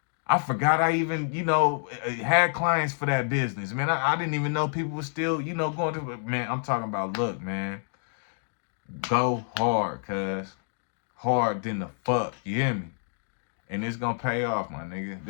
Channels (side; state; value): right; silent; digital silence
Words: I forgot I even, had clients for that business. Man, I didn't even know people were still, going to it. Man, I'm talking about, look, man. Go hard, cuz. Hard than the fuck. You hear me? And it's gonna pay off, my nigga.